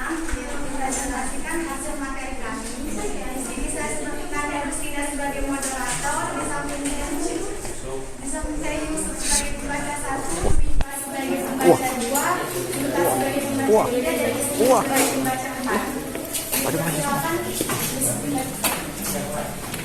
mempresentasikan hasil materi kami. Di sini saya sebutkan Rustina sebagai moderator, di samping saya Yusuf sebagai pembaca 1, Wika sebagai pembaca 2, Yuka sebagai pembaca 3, dan Yusuf sebagai pembaca 4.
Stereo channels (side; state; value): both; identical; correlation 1.00